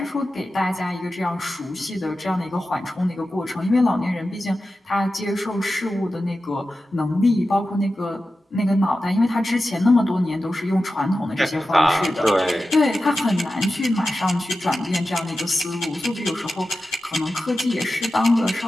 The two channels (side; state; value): both; normal; correlation 0.93